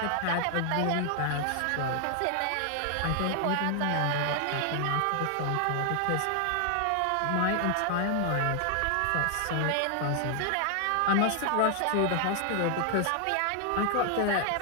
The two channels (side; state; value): both; different; correlation 0.00